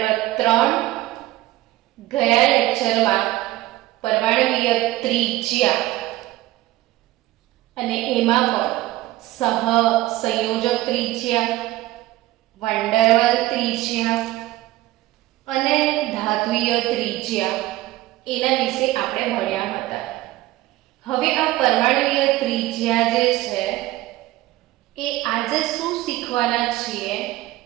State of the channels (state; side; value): quieter; left; 16.9 dB